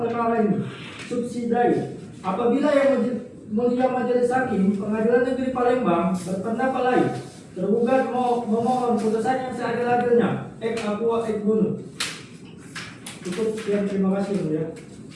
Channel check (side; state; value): both; identical; correlation 1.00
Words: ini. Subsidiary. Apabila Yang Mulia Majelis Hakim Pengadilan Negeri Palembang berpendapat lain, tergugat memohon putusan yang seadil-adilnya. Ek aqua ek bono. Cukup sekian, terima kasih Mulia.